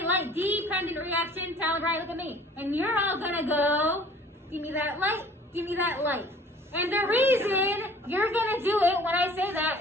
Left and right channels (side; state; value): both; normal; correlation 0.51